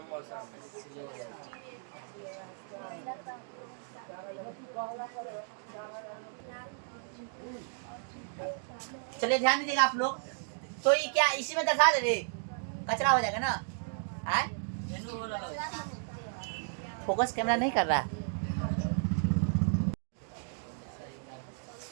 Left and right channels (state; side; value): silent; left; digital silence